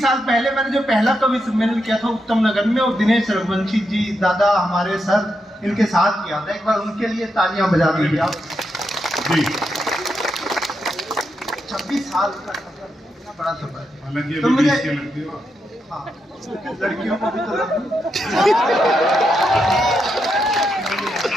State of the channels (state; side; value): normal; both; correlation 0.83